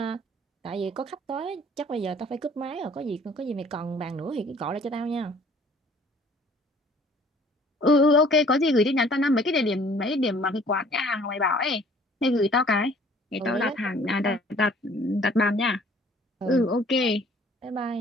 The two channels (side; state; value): both; normal; correlation 0.55